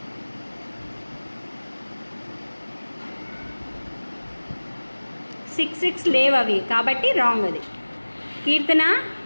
సిక్స్ లేవు అవి, కాబట్టి రాంగ్ అది. కీర్తన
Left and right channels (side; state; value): both; inverted; correlation -1.00